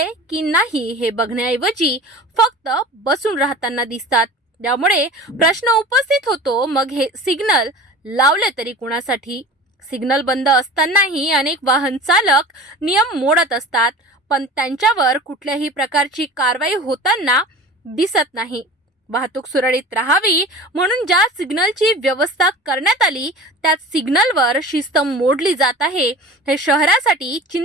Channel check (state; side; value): normal; both; correlation 0.37